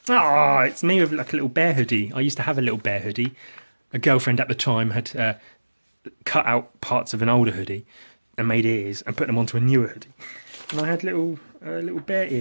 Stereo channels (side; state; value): both; inverted; correlation -1.00